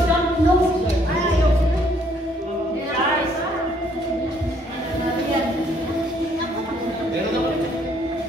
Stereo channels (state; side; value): normal; both; correlation 0.65